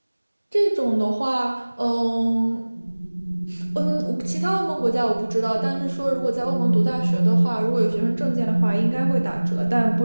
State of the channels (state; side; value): inverted; both; correlation -1.00